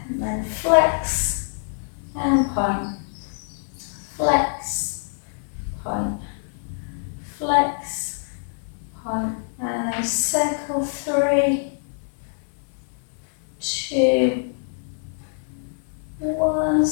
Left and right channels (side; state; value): right; silent; 57 dB below the other